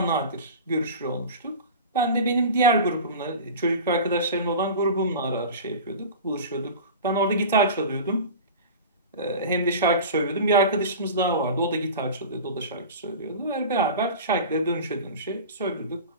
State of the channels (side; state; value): both; inverted; correlation -0.33